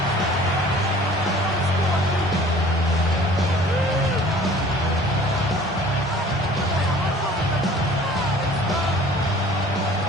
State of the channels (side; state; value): both; normal; correlation 0.49